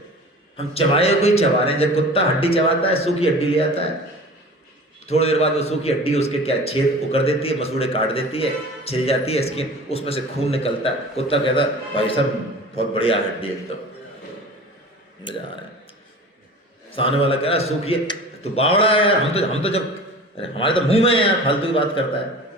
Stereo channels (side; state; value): both; normal; correlation 0.40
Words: हम चबाए कोई चबा रहे हैं। जब कुत्ता हड्डी चबाता है, सूखी हड्डी ले आता है, थोड़ी देर बाद वो सूखी हड्डी उसके क्या छेद वो कर देती है, मसूड़े काट देती है, छिल जाती है स्किन, उसमें से खून निकलता है। कुत्ता कहता है भाई साहब बहुत बढ़िया हड्डी एकदम, मजा आ रहा है। सामने वाला कह रहा है सूखी है, तू बावड़ा है यार, हम तो जब, अरे हमारे तो मुंह में है यार, फालतू की बात करता है।